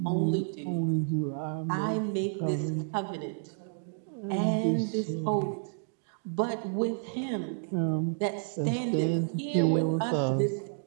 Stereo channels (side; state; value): left; silent; digital silence